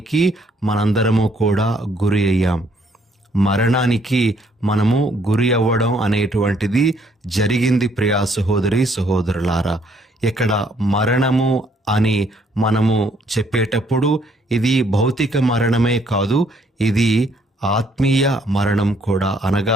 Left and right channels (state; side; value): normal; both; correlation 0.66